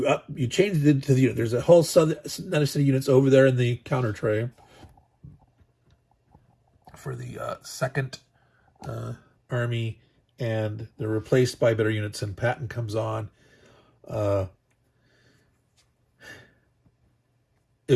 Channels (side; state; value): both; identical; correlation 1.00